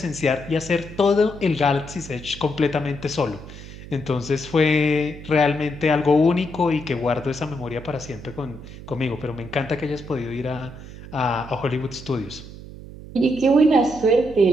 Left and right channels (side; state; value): right; noise; hum, 14 dB below the sound